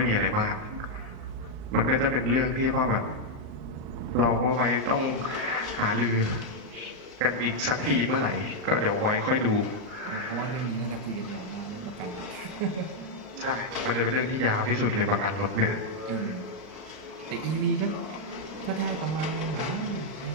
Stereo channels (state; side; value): late; left; 38 ms